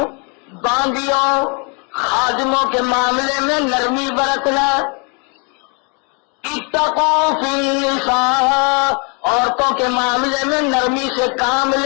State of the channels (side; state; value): right; quieter; 34.6 dB